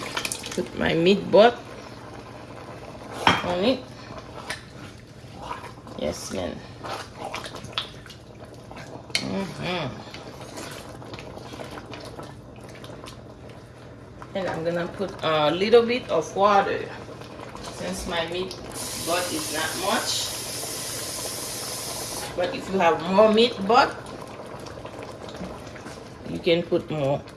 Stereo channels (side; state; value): both; identical; correlation 1.00